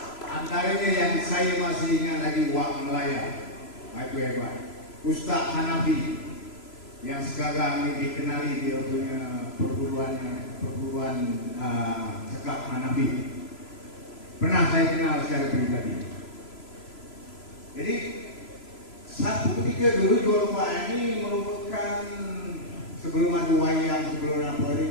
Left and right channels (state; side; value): late; right; 3.0 ms